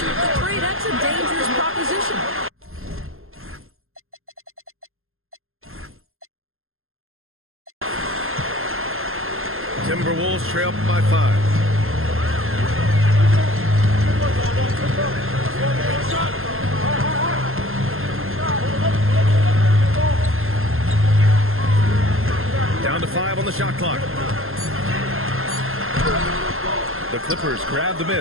the three. That's a dangerous proposition. Timberwolves trail by 5. Down to 5 on the shot clock. The Clippers grab the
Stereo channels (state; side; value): late; left; 0.61 ms